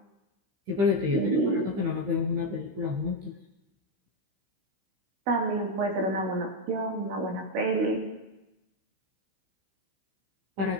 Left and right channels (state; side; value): late; left; 15 ms